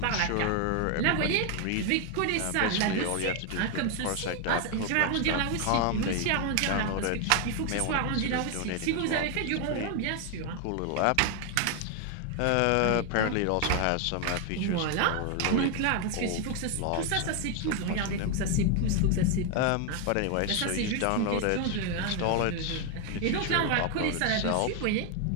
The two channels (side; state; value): both; different; correlation 0.01